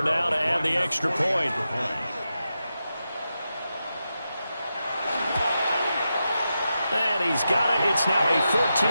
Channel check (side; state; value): both; inverted; correlation -0.89